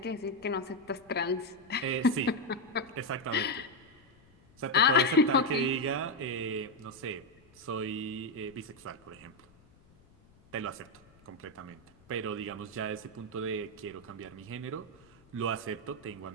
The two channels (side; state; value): left; noise; rumble, 28 dB below the sound